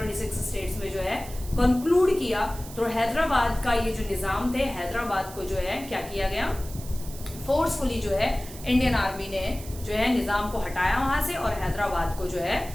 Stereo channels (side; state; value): right; noise; hiss, 15 dB below the sound